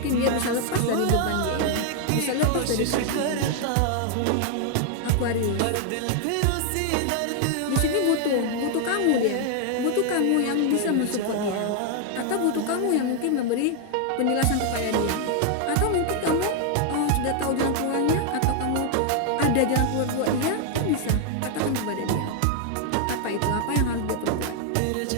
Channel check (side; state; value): both; different; correlation 0.00